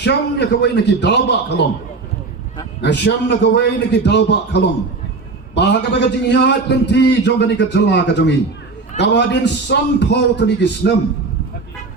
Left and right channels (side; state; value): left; quieter; 4.0 dB